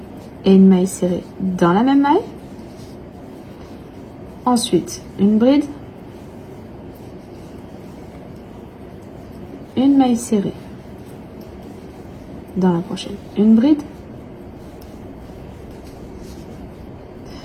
et une maille serrée dans la même maille. Ensuite, une bride, une maille serrée. Dans la prochaine, une bride,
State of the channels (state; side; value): identical; both; correlation 1.00